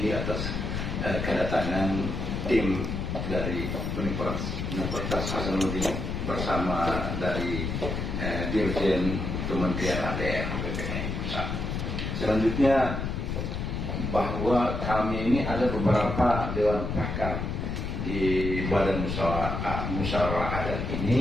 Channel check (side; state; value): left; noise; rumble, 3 dB below the sound